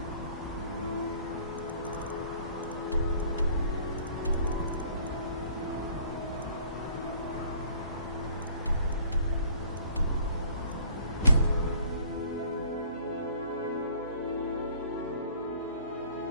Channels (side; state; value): both; inverted; correlation -0.54